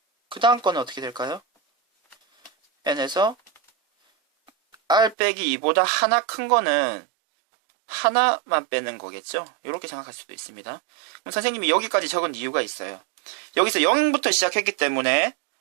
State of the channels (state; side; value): drops out; left; at 5.2 s